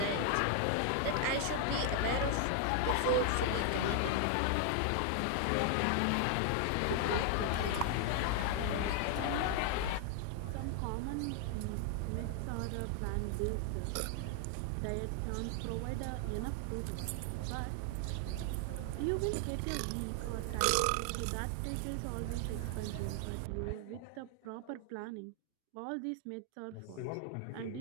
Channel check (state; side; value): different; both; correlation 0.00